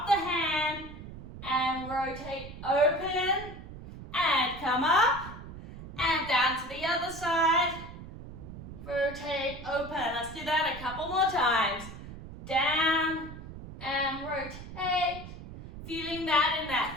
the hand, and rotate open, and come up, and down to the other side. Rotate, open. Let's do that a couple more times. Down and rotate. Feeling that in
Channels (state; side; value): noise; right; rumble, 13 dB below the sound